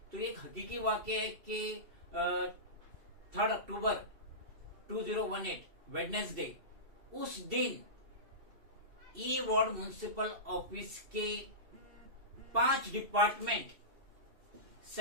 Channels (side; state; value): left; late; 2.7 ms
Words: तो एक हकीकी वाकया है कि 3 अक्टूबर 2018 वेडनेसडे, उस दिन ई वार्ड म्युनिसिपल ऑफिस के 5 डिपार्टमेंट